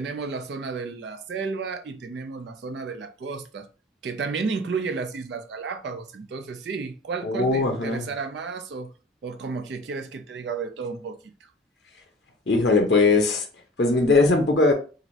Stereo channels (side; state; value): both; normal; correlation 0.40